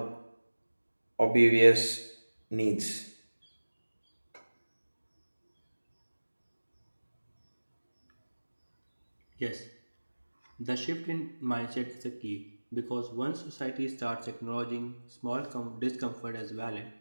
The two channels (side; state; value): both; inverted; correlation -1.00